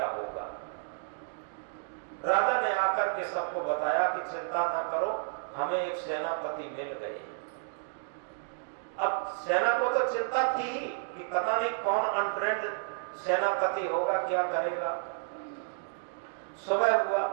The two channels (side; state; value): left; silent; digital silence